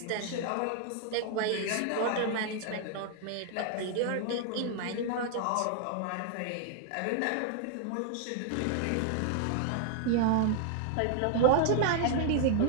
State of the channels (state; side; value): different; both; correlation 0.00